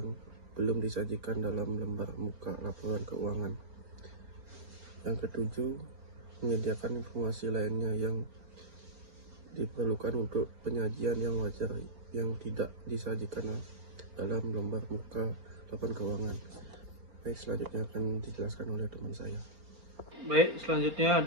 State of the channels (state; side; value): late; left; 4.4 ms